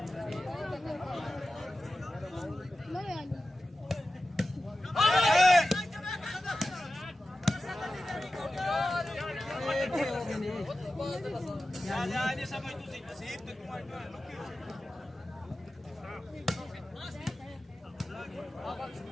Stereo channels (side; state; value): both; normal; correlation 0.94